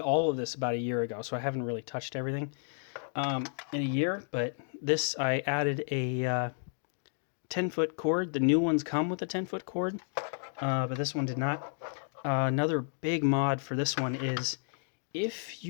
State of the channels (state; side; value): silent; right; digital silence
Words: of this about a year ago, so I haven't really touched everything in a year. But this, I added a 10-foot cord. The new ones come with a 10-foot cord, but this one did not. Another big mod for this one is if